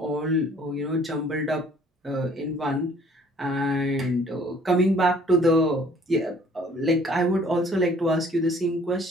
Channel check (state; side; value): normal; both; correlation 0.57